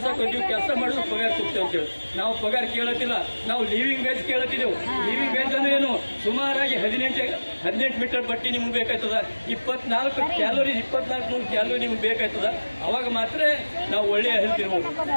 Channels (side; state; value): both; inverted; correlation -1.00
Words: ಮಾಡಿದ್ರೆ ಪಗಾರ ಕೊಡ್ತೇವೆ ಅಂತೇಳಿ. ನಾವು ಪಗಾರ ಕೇಳತ್ತಿಲ್ಲ, ನಾವು ಲಿವಿಂಗ್ ವೇಜ್ ಕೇಳತ್ತಿದ್ದೆವು. ಲಿವಿಂಗ್ ವೇಜ್ ಅಂದ್ರೆ ಏನು? ಸುಮಾರಾಗಿ 18 ಮೀಟರ್ ಬಟ್ಟೆ ನಿಮ್ಗೆ ಬೇಕಾಯ್ತದ, 24 ಕ್ಯಾಲೋರಿ 2400 ಕ್ಯಾಲೋರಿ ನಿಮ್ಗೆ ಬೇಕಾಯ್ತದ. ಅವಾಗ ಮಾತ್ರ ನಾವು ಒಳ್ಳೆಯ ಹೆಲ್ತ್ ಇರ್ಬೋದು.